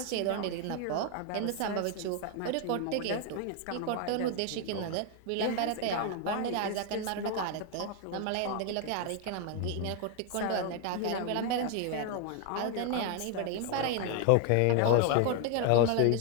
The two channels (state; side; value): different; both; correlation 0.00